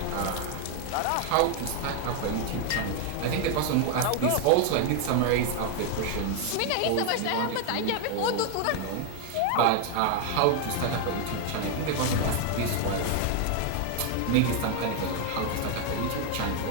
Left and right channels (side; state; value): both; different; correlation 0.00